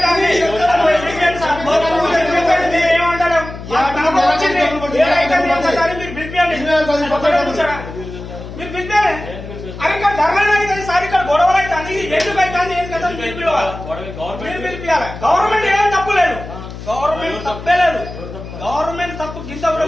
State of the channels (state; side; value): noise; left; hum, 11 dB below the sound